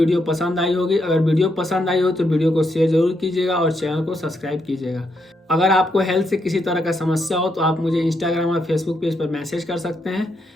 पसंद आई होगी। अगर वीडियो पसंद आई हो तो वीडियो को शेयर जरूर कीजिएगा और चैनल को सब्सक्राइब कीजिएगा। अगर आपको हेल्थ से किसी तरह का समस्या हो तो आप मुझे इंस्टाग्राम और फेसबुक पेज पर मैसेज कर सकते हैं।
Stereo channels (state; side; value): normal; both; correlation 0.79